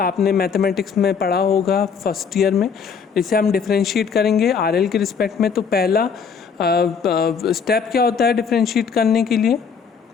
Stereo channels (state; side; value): quieter; right; 6.3 dB